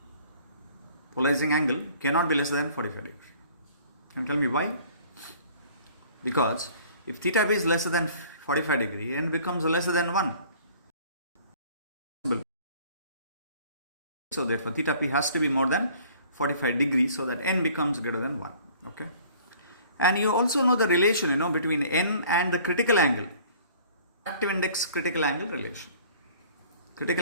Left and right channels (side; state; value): both; inverted; correlation -0.52